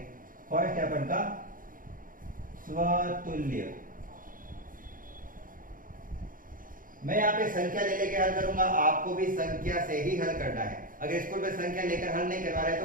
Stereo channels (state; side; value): late; left; 0.40 ms